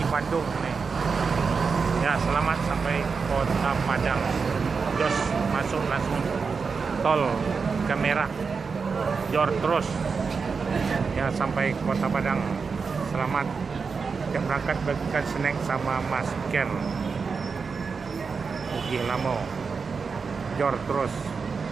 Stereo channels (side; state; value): left; quieter; 5.2 dB